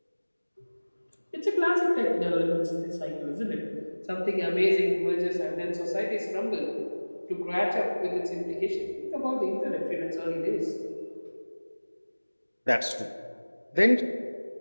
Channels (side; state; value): both; inverted; correlation -1.00